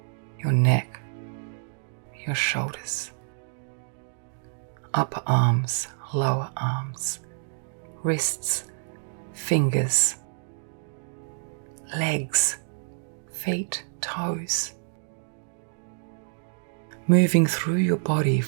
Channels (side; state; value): left; silent; digital silence